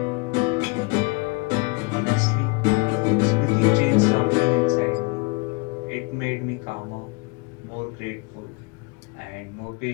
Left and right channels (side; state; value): right; quieter; 29.3 dB